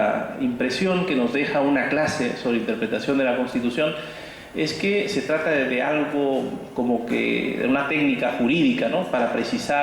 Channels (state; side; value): identical; both; correlation 1.00